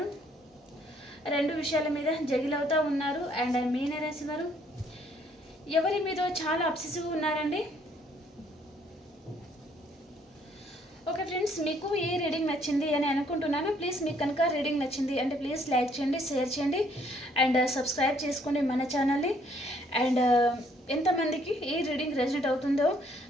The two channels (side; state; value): both; normal; correlation 0.65